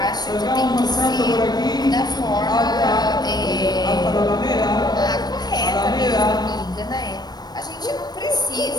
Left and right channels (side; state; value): right; late; 0.19 ms